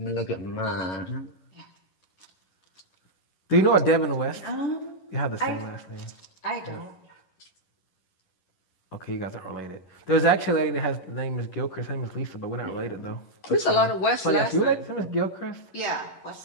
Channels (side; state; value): right; late; 11 ms